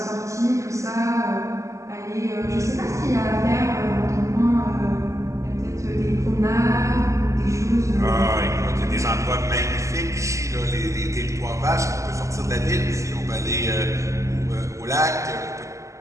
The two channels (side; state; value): left; late; 0.15 ms